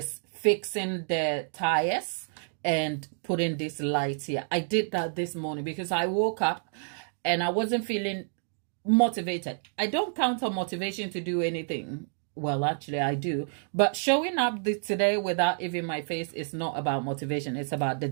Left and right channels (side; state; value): left; silent; 56 dB below the other